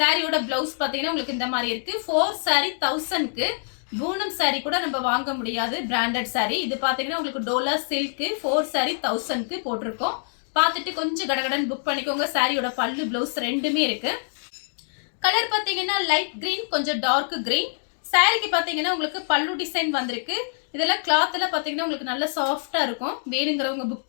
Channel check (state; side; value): silent; right; digital silence